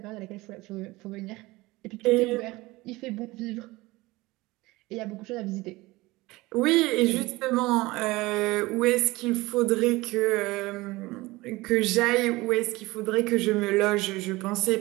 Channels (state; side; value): quieter; left; 20.8 dB